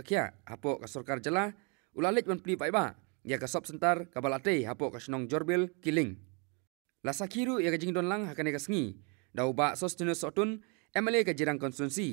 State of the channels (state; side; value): quieter; left; 34.2 dB